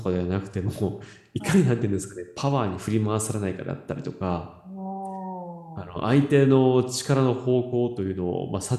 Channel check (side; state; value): both; identical; correlation 1.00